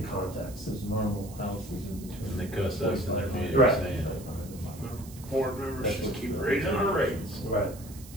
context. There's normal houses in between. And they cuss us in their meeting Right. saying, board members just keep raising our rates. Right.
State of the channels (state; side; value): noise; right; hiss, 18 dB below the sound